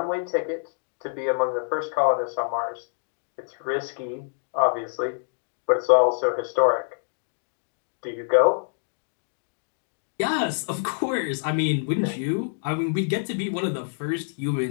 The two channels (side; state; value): right; silent; digital silence